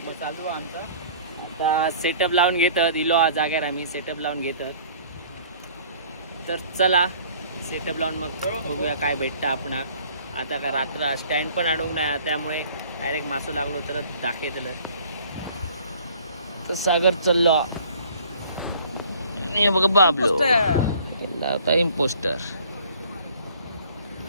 चालू आमचा. आता सेटअप लावून घेतात इलो हा जाग्यार आम्ही सेटअप लावून घेतात. तर चला सेटअप लावून मग बघूया काय भेटतं आपणाक. आता का रात्र स्टँड पण अडवून नाही त्यामुळे डायरेक्ट मासो लागलो तर दाखवतलं. तर सागर चाललो हे बघ बाबलो इम्पोस्टर.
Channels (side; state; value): both; inverted; correlation -0.52